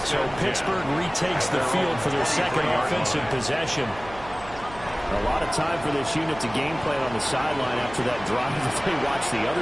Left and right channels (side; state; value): right; noise; hum, 17 dB below the sound